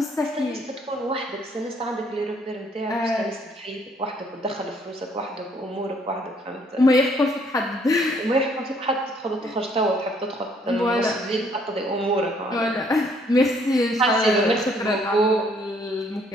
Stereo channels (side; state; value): both; normal; correlation 0.65